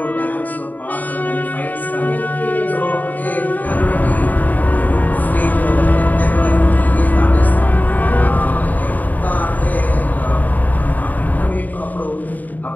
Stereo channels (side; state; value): right; late; 0.082 ms